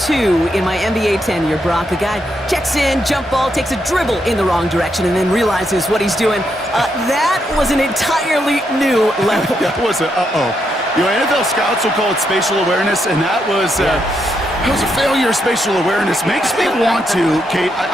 two in my NBA tenure, Brock. A guy checks in, jump ball, takes a dribble in the wrong direction, and then realizes what he's doing. That was an entirely new level. That was a uh-oh. You know, NFL scouts will call it spatial awareness, and that was a failure of spatial awareness. Makes me want to, Kate,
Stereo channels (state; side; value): normal; both; correlation 0.80